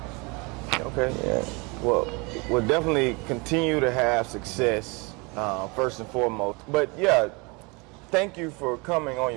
Okay. Yeah. Well, we'll definitely continue to have success, first and foremost. But yeah, thank you for coming on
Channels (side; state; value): left; quieter; 28.4 dB